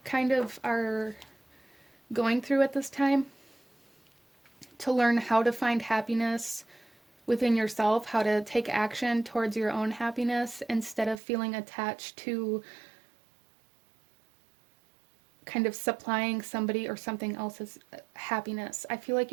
kind of are going through at this time, to learn how to find happiness within yourself, how to take action towards your own happiness instead of feeling attached to kind of supplying somebody or something else's happiness. I feel like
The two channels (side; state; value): left; drops out; at 11.2 s